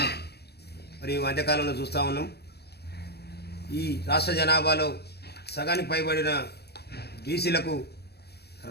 మరి ఈ మధ్యకాలంలో చూస్తూ ఉన్నాం. ఈ రాష్ట్ర జనాభాలో సగానికి పైబడిన బీసీలకు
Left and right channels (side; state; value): right; late; 0.47 ms